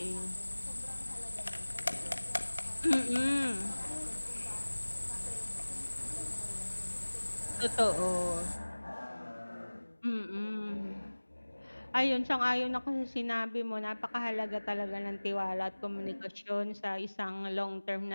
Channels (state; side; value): inverted; both; correlation -1.00